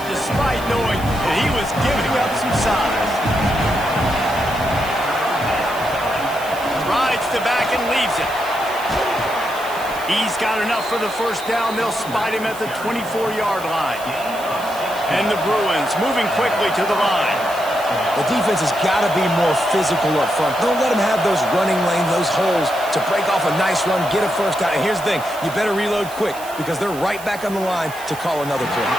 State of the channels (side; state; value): right; noise; hiss, 16 dB below the sound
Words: despite knowing that he was giving up some size. Rides the back and leaves it. He's got enough for the 1st down. They'll spot him at the 24-yard line. And the Bruins moving quickly to the line. The defense has got to be more physical up front. Don't let them have those running lanes, those holes to break off a nice run, get a 1st down. And here's the thing, you better reload quick because they're right back on the line to call another play.